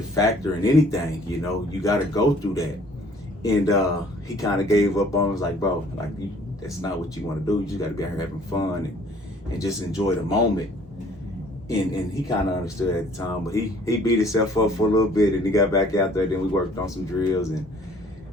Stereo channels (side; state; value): both; normal; correlation 0.56